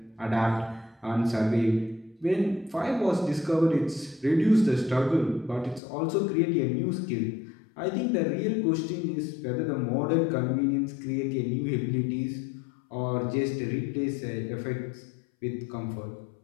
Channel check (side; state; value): right; drops out; at 5.8 s